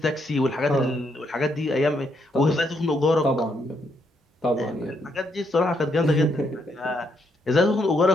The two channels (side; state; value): both; normal; correlation 0.76